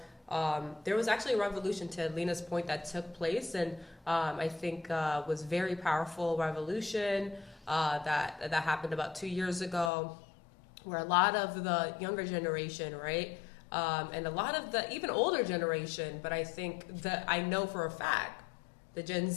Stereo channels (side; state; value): right; drops out; at 9.9 s